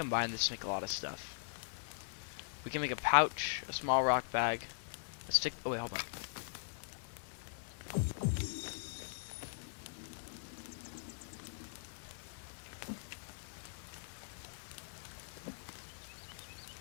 this to make a lot of stuff. We can make a pouch, a small rock bag, a stick. Oh wait, hold on.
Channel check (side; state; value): right; silent; digital silence